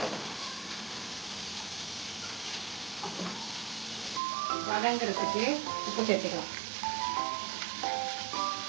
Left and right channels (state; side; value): drops out; left; at 4.2 s